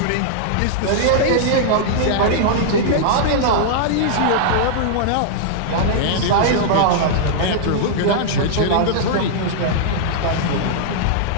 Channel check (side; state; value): both; different; correlation -0.01